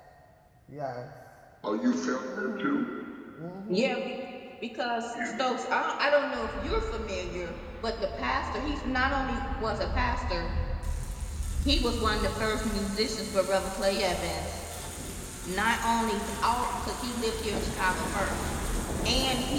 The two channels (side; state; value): both; identical; correlation 1.00